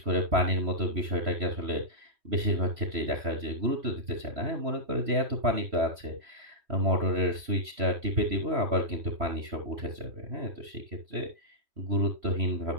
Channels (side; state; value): left; late; 3.0 ms